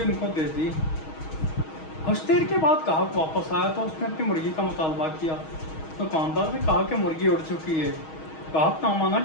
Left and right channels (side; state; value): right; late; 6.3 ms